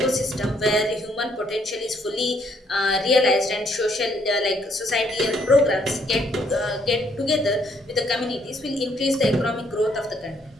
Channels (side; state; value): both; normal; correlation 0.69